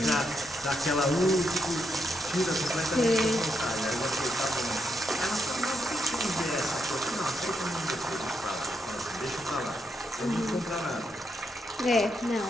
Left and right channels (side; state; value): both; normal; correlation 0.80